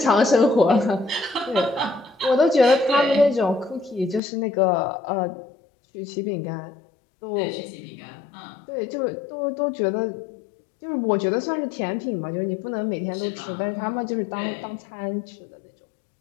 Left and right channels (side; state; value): right; drops out; at 4.2 s